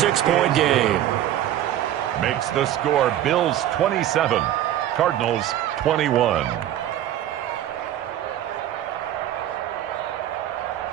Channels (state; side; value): quieter; left; 12.1 dB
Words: game. Makes the score Bills 27, Cardinals 21.